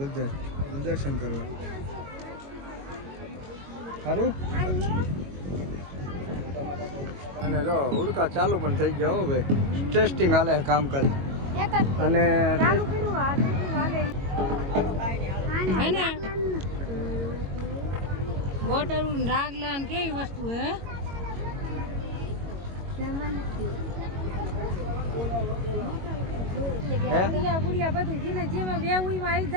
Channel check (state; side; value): late; left; 22 ms